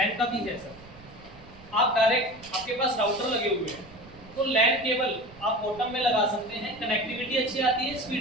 का भी है सर। आप डायरेक्ट, आपके पास राउटर लगे हुए हैं तो लैन केबल आप बॉटम में लगा सकते हैं, कनेक्टिविटी अच्छी आती है,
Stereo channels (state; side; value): noise; right; rumble, 21 dB below the sound